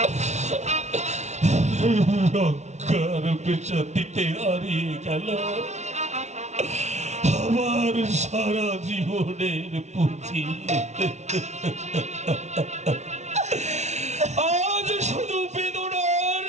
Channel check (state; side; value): late; left; 0.32 ms